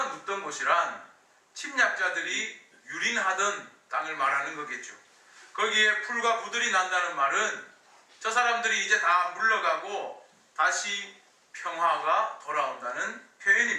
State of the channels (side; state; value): both; identical; correlation 1.00